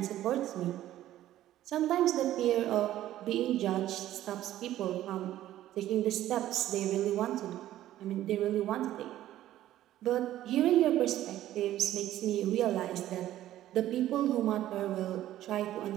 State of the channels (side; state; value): left; quieter; 13.4 dB